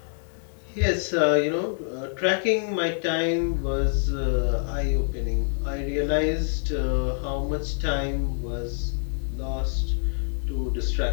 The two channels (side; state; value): right; silent; 61 dB below the other